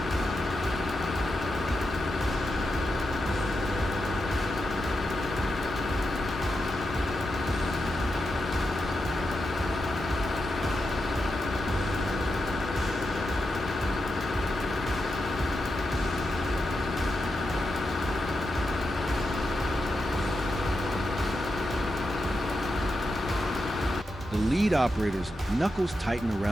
The lead operator's knuckles tighten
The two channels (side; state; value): both; normal; correlation 0.87